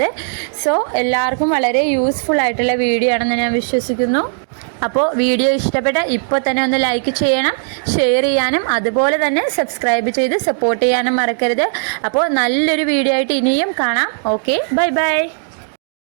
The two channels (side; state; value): left; silent; digital silence